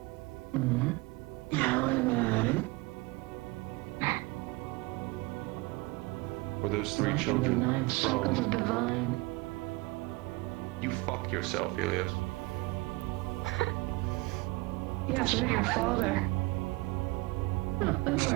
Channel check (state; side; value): quieter; left; 23.5 dB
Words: Were those 3 children from... You fuck yourself, Helios. Yes, you're your father.